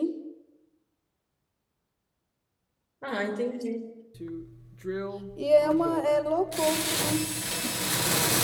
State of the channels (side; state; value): both; identical; correlation 1.00